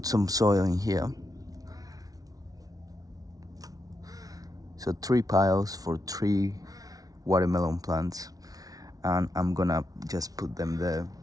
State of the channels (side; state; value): left; late; 0.18 ms